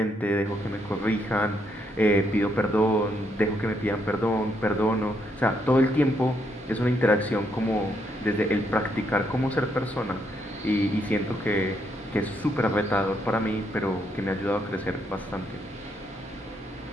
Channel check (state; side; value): normal; both; correlation 0.76